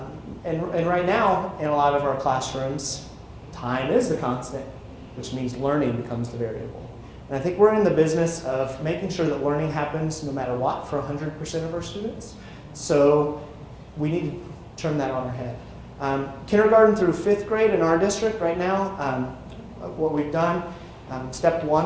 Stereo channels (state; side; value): identical; both; correlation 1.00